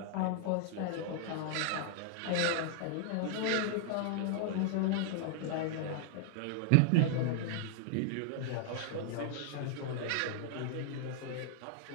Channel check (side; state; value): both; different; correlation -0.01